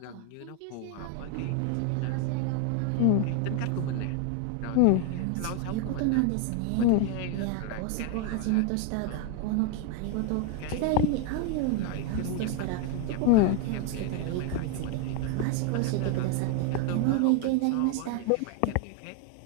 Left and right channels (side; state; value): both; different; correlation 0.01